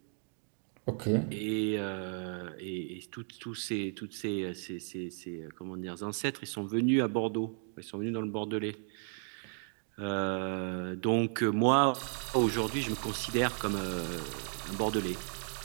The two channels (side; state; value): left; silent; 55 dB below the other